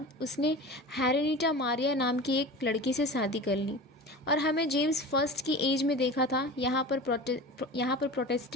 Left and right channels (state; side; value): normal; both; correlation 0.34